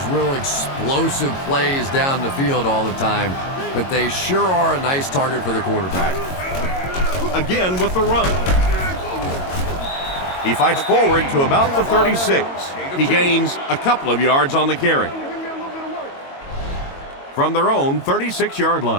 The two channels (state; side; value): late; right; 22 ms